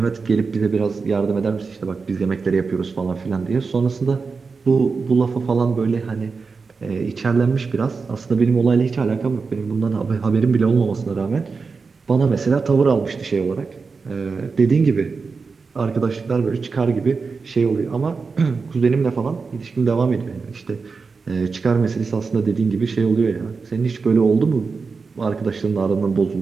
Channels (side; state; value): left; quieter; 4.7 dB